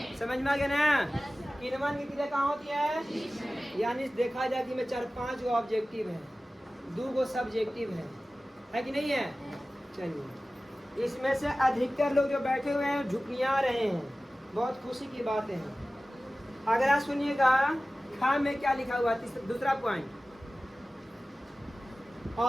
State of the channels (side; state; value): both; normal; correlation 0.96